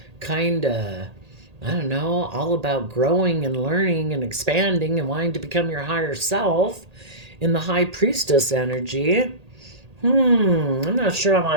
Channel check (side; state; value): left; late; 1.8 ms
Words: kind of, I don't know, all about growing and learning and expanding and wanting to become your higher self in the high priestess energy. I'm not sure I